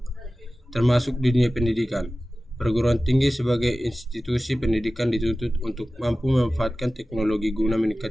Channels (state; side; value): normal; both; correlation 0.96